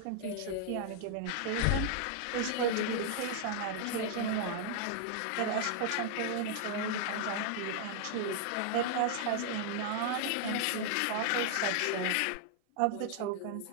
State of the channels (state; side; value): different; both; correlation -0.01